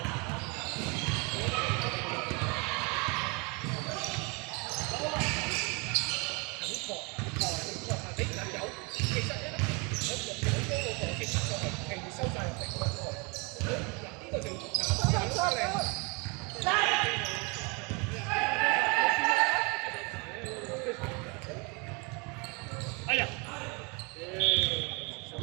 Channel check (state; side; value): quieter; left; 30.3 dB